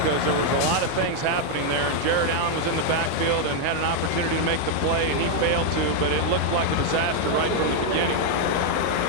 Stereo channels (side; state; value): both; different; correlation 0.00